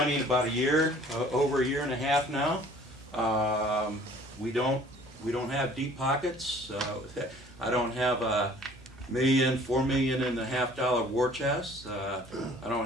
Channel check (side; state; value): both; normal; correlation 0.52